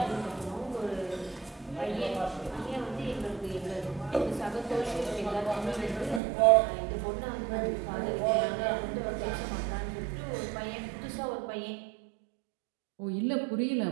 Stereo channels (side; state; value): left; drops out; at 6.2 s